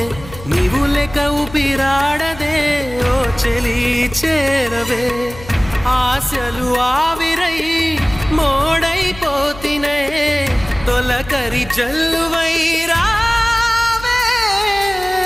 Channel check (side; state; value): left; noise; hum, 16 dB below the sound